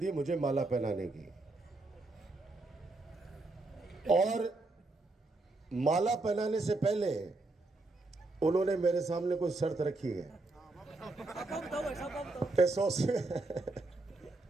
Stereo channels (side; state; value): left; quieter; 3.1 dB